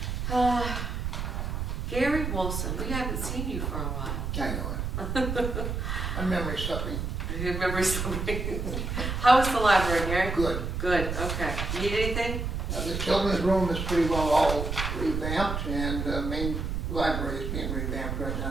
Gary Wilson, we haven't seen you for a while. I know it. My memory's suffering. You remember something? How is the library, Gary? Good. Good, okay. Need anything? The children's room is pretty well all revamped, and the main library is being revamped right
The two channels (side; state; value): right; noise; rumble, 3 dB below the sound